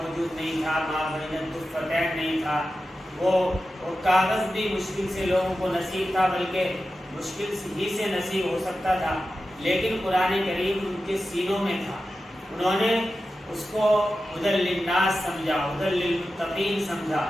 نہیں تھا، ما بین الدفتین نہیں تھا، وہ کاغذ بھی مشکل سے لوگوں کو نصیب تھا، بلکہ مشکل ہی سے نصیب ہو سکتا تھا، لیکن قرآن کریم ان کے سینوں میں تھا۔ انہوں نے اس کو ہدی للناس سمجھا، ہدی للمتقین سمجھا،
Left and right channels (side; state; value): both; normal; correlation 0.92